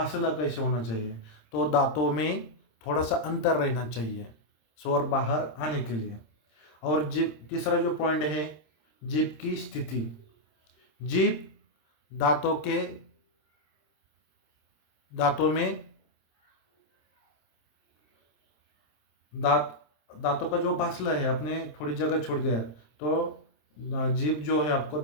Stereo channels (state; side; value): late; right; 26 ms